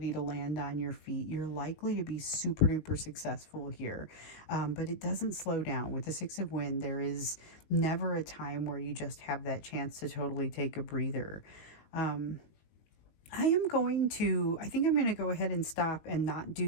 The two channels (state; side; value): late; right; 19 ms